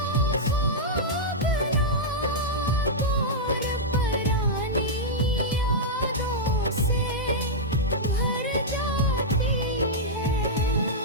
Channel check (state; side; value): normal; both; correlation -0.08